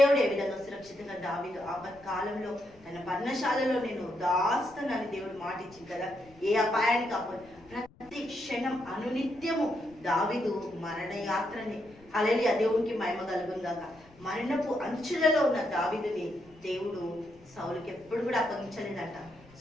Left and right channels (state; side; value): noise; left; rumble, 25 dB below the sound